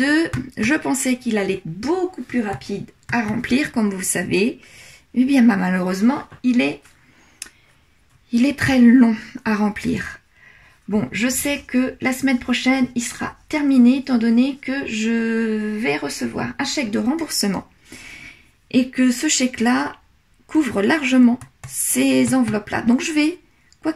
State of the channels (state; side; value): identical; both; correlation 1.00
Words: je pensais qu'il allait être beaucoup plus rapide à remplir, comme vous savez. Eh bien, malheureusement, il est très long à remplir. Bon, je sais que la semaine prochaine, il sera terminé, étant donné que je vais recevoir un chèque de remboursement. Et que ce chèque-là couvre largement ces enveloppes-là. Donc, je vais, quoi